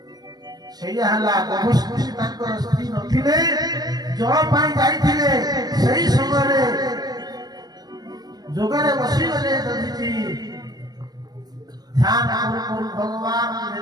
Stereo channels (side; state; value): left; late; 0.19 ms